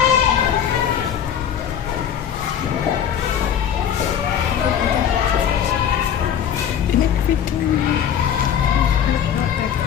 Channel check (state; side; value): quieter; right; 9.0 dB